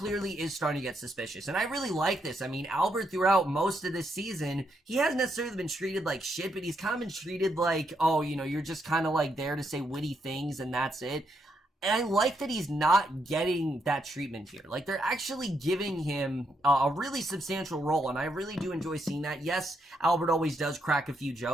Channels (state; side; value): normal; both; correlation 0.78